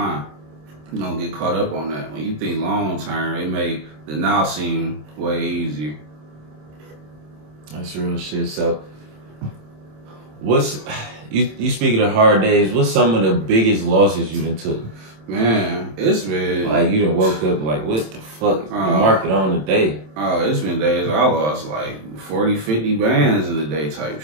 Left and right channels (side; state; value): left; late; 27 ms